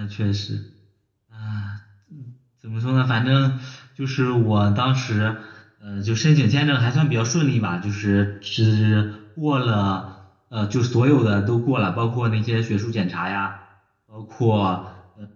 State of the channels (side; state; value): both; identical; correlation 1.00